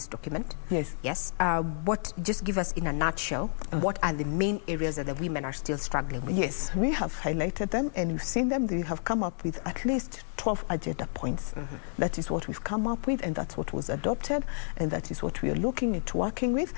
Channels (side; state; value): right; silent; digital silence